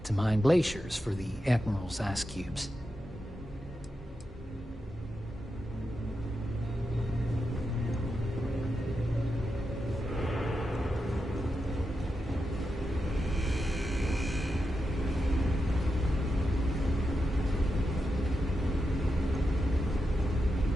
to mine glaciers for the Admiral's ice cubes.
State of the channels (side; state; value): both; normal; correlation 0.88